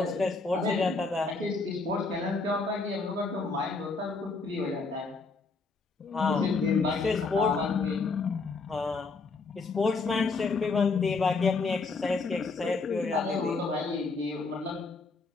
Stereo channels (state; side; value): quieter; right; 4.0 dB